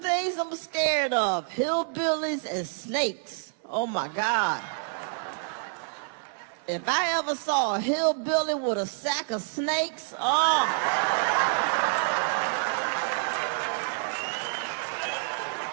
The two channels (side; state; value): left; silent; digital silence